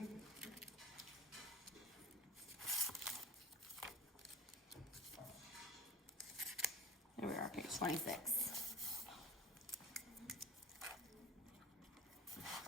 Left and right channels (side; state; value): both; normal; correlation 0.37